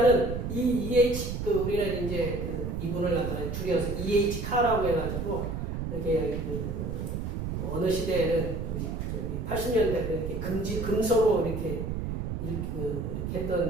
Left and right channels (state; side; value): noise; right; rumble, 4 dB below the sound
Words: 이 EH, 우리는 이제 이분을 갖다가 줄여서 EH 카라고 해가지고 이렇게 어느 시대에는 우리 80년대에 이렇게 금서로 이렇게